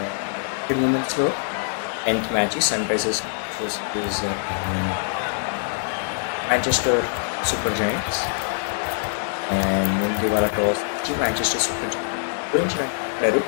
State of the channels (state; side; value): silent; right; digital silence